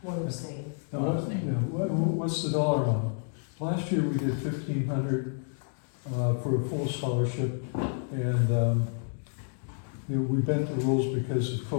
One abstain. Now, what's the dollar amount? Last year, we did 1,500 for a full scholarship, and we bent the rules because of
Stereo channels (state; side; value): silent; right; 58 dB below the other